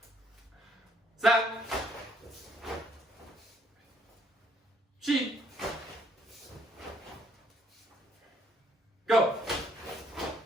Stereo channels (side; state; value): both; normal; correlation 0.67